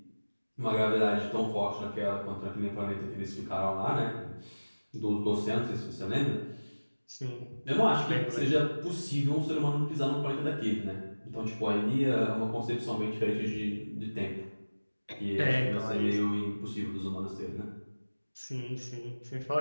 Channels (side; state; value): both; inverted; correlation -1.00